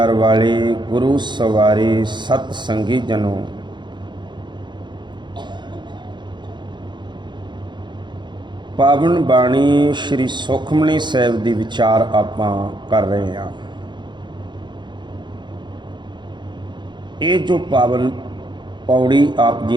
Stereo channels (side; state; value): left; late; 0.22 ms